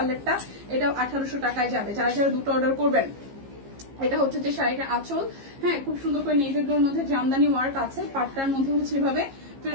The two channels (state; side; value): late; left; 15 ms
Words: এটাও 1800 টাকায় যাবে। যারা যারা দুটো অর্ডার করবেন, এটা হচ্ছে যে শাড়িটার আঁচল, হ্যাঁ খুব সুন্দর করে নেভি ব্লুর মধ্যে জামদানি ওয়ার্ক আছে, পাটটার মধ্যে হচ্ছে এভাবে